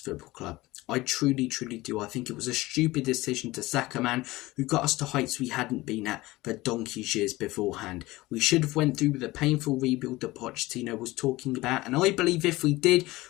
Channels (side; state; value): right; quieter; 19.6 dB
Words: club. I truly do. I think it was a stupid decision to sack a man who got us to heights we hadn't been at for donkey's years beforehand. We should have went through with the painful rebuild that Pochettino was talking about, and I believe if we did,